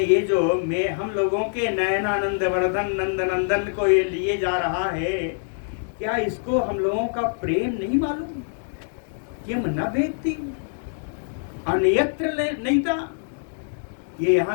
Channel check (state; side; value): silent; right; digital silence